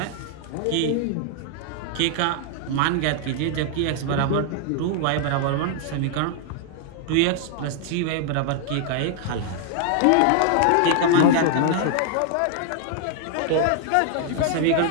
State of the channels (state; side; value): different; both; correlation 0.00